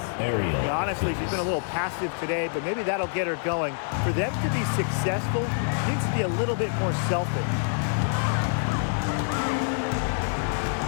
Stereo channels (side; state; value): right; silent; 61 dB below the other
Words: Yeah, honestly, she's been a little passive today, but maybe that'll get her going. For them to be successful, she needs to be a little bit more selfish.